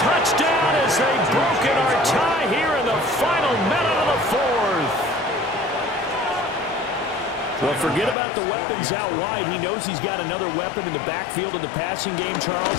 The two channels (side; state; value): right; drops out; at 8.2 s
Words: touchdown as they've broken our tie here in the final minute of the 4th. Well, forget about the weapons out wide. He knows he's got another weapon in the backfield of the passing game,